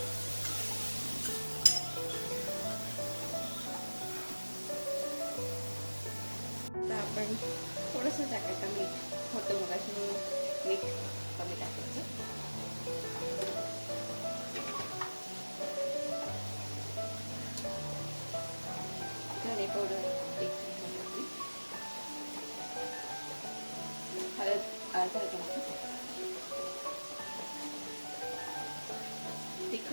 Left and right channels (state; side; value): inverted; both; correlation -1.00